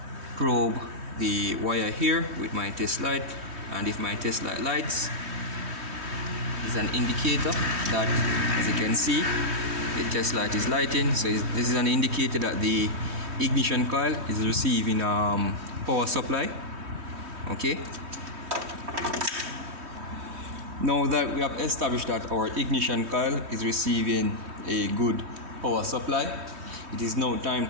probe the wire here with my test light, and if my test light lights, it's an indicator that, as you can see, the test light is lighting. So this is an indicator that the ignition coil is receiving power supply. Okay, now that we have established that our ignition coil is receiving a good power supply, it is now time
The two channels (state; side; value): late; left; 3.2 ms